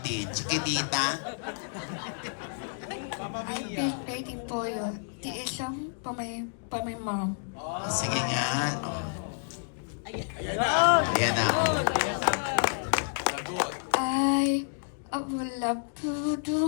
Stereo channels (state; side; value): silent; right; digital silence